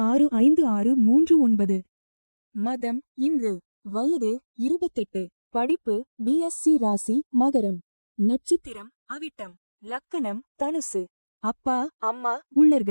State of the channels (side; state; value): both; inverted; correlation -1.00